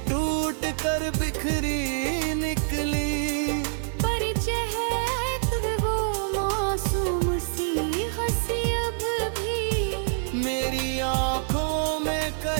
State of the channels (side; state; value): left; silent; digital silence